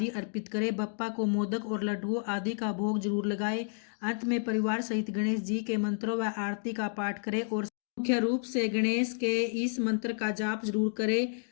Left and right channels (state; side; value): silent; right; digital silence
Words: अर्पित करें। बप्पा को मोदक और लड्डुओं आदि का भोग जरूर लगाए। अंत में परिवार सहित गणेश जी के मंत्रों व आरती का पाठ करें और मुख्य रूप से गणेश के इस मंत्र का जाप जरूर करें।